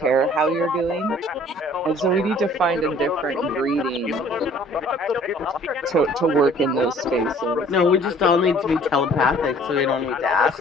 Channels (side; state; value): both; normal; correlation 0.54